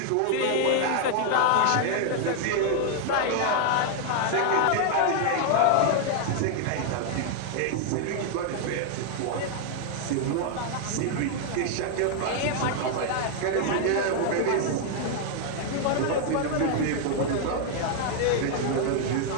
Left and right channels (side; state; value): both; different; correlation 0.00